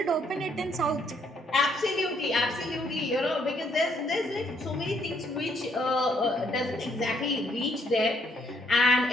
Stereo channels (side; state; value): both; normal; correlation 0.69